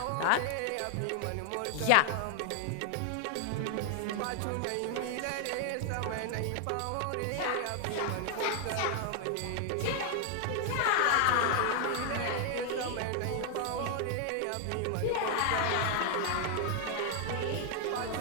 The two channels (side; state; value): both; different; correlation 0.00